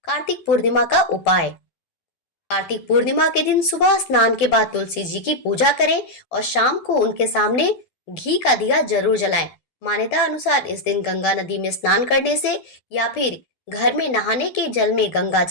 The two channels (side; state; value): right; late; 12 ms